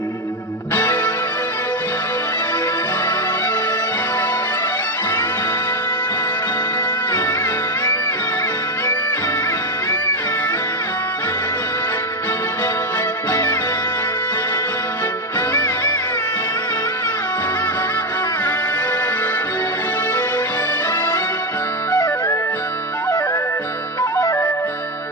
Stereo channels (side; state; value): both; normal; correlation 0.09